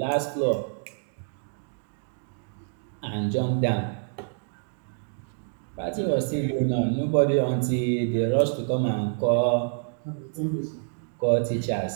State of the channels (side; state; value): left; silent; digital silence